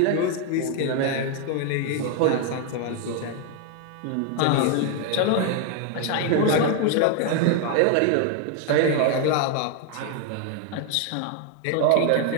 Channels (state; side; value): different; both; correlation 0.01